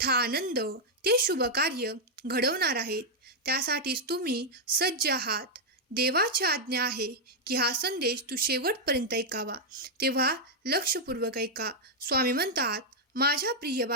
आनंद, ते शुभ कार्य घडवणार आहेत. त्यासाठीच तुम्ही सज्ज आहात. देवाची आज्ञा आहे की हा संदेश तू शेवटपर्यंत ऐकावा, तेव्हा लक्षपूर्वक ऐका. स्वामी म्हणतात, माझ्या प्रिय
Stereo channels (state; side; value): normal; both; correlation -0.03